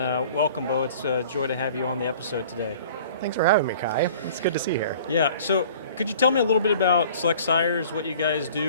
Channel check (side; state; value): both; inverted; correlation -0.48